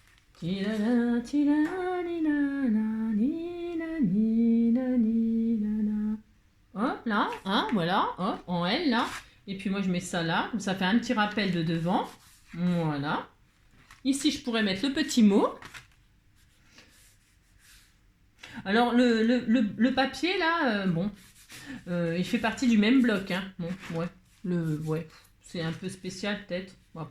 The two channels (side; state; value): both; identical; correlation 1.00